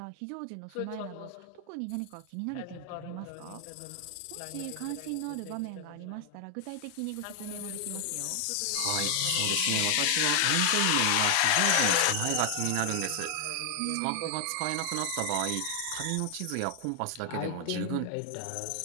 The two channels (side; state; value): both; different; correlation 0.00